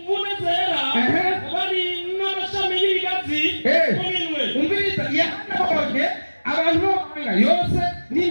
zera bari n'amashami y'ibigazi mu minwe. Umviriza yahanabonye abantu b'amahanga yose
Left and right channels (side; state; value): both; inverted; correlation -1.00